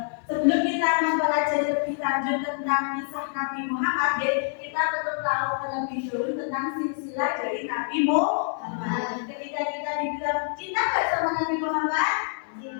Sebelum kita mempelajari lebih lanjut tentang kisah Nabi Muhammad, kita perlu tahu terlebih dahulu tentang silsilah dari Nabi Muhammad. Ketika kita dibilang cinta nggak sama Nabi Muhammad?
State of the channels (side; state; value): right; silent; digital silence